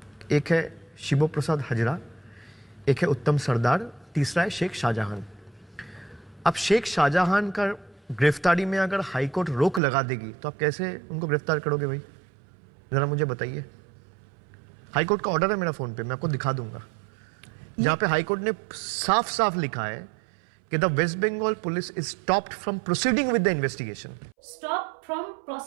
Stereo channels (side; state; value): left; drops out; at 9.8 s